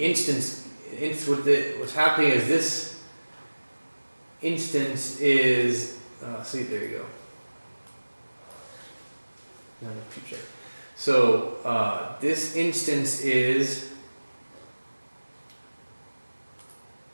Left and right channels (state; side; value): inverted; both; correlation -1.00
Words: instance, what's happening is this instance is. See, there you go. No, check. So this instance is.